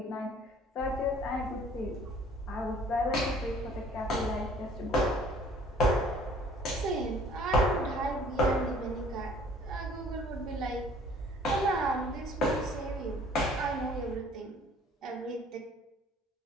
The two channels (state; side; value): normal; both; correlation 0.54